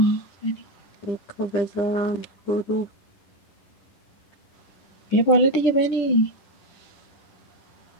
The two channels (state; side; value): late; right; 10 ms